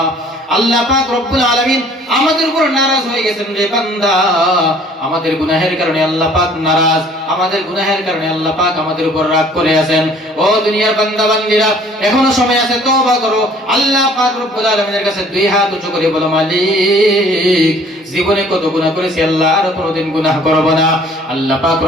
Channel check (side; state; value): both; normal; correlation 0.55